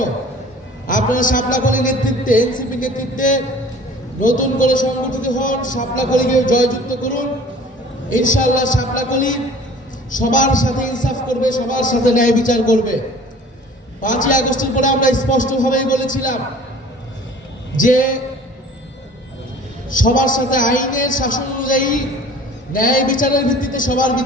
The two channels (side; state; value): both; normal; correlation 0.47